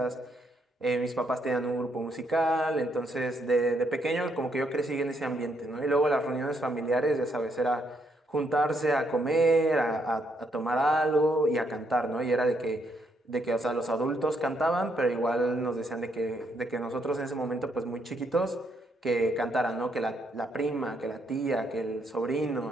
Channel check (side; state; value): both; normal; correlation 0.75